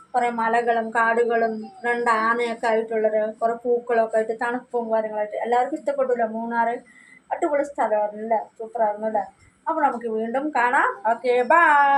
കുറെ മലകളും കാടുകളും 2 ആനയൊക്കെ ആയിട്ടുള്ളൊരു കുറെ പൂക്കളൊക്കെ ആയിട്ട് തണുപ്പും കാര്യങ്ങളായിട്ട് എല്ലാവർക്കും ഇഷ്ടപ്പെട്ടല്ലോ. മൂന്നാറ് അടിപൊളി സ്ഥലമായിരുന്നല്ലേ. സൂപ്പറായിരുന്നല്ലേ. അപ്പോൾ നമുക്ക് വീണ്ടും കാണാം. Okay,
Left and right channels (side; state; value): both; identical; correlation 1.00